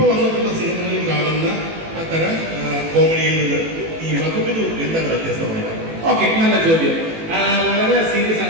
വന്നിട്ടുള്ള സിനിമകളിൽ കാണുന്ന തരം കോമഡിയിൽ നിന്ന് ഈ മധുവിധു എന്താണ് വ്യത്യസ്തമായത്? ഓക്കെ, നല്ല ചോദ്യം. വളരെ സീരിയസ്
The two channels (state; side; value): late; left; 18 ms